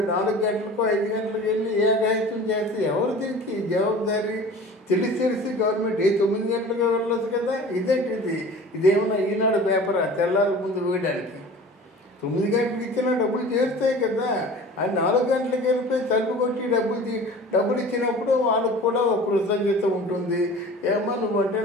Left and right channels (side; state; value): both; normal; correlation 0.41